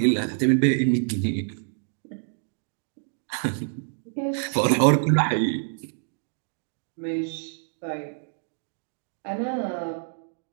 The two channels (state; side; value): silent; left; 60 dB below the other